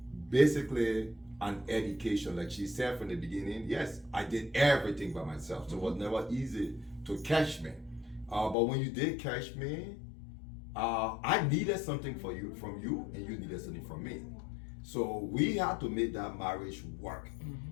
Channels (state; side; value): drops out; right; at 8.6 s